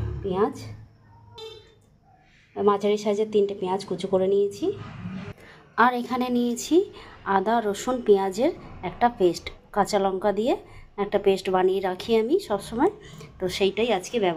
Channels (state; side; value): identical; both; correlation 1.00